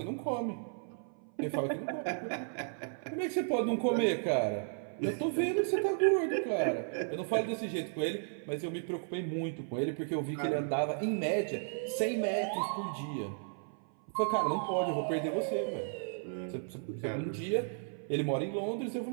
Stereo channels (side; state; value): left; silent; 55 dB below the other